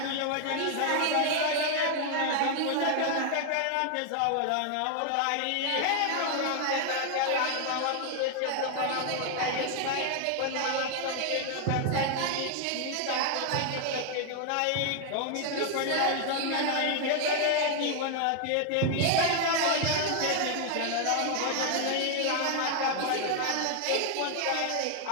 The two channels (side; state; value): both; different; correlation 0.00